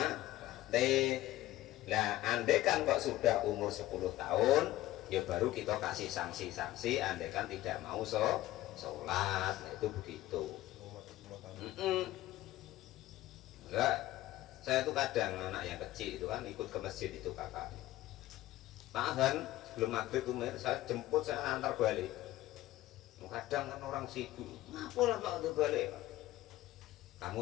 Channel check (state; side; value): quieter; right; 15.8 dB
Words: Nah andaikan kok sudah umur 10 tahun, ya baru kita kasih sanksi-sanksi andaikan tidak mau sholat. Nah itu begitu. Enggak, saya tuh kadang anak yang kecil itu kan ikut ke masjid itu kakaknya. Tahan sebelum maghrib tuh saya jemput, saya antar balik. Kadang kan orang sibuk, ngapalah Pak udah balik Pak?